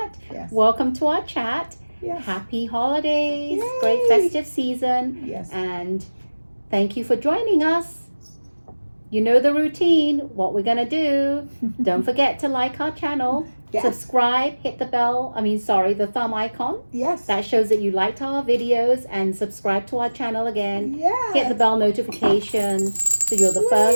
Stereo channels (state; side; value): inverted; both; correlation -1.00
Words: Yes. Welcome to our chat. Yes. Happy holidays. Yay. Great festive season. Yes. And thank you for joining us. You know the routine, what we're going to do. Don't forget to like our channel. Yes. Subscribe, hit the the thumb icon. Yes. That shows that you liked our videos, and subscribe to our channel again. Yes. Hit the bell notification so you're the